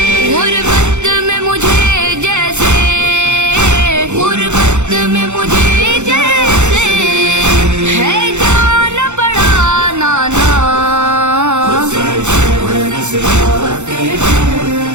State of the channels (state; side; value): late; left; 0.83 ms